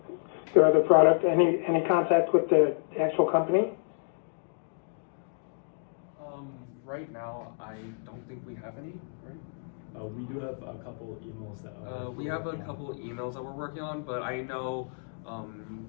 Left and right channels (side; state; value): right; silent; digital silence